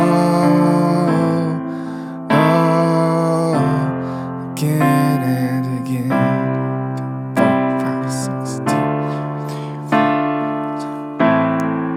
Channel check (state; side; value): identical; both; correlation 1.00